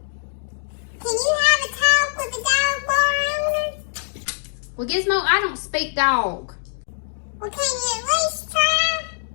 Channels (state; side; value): silent; right; digital silence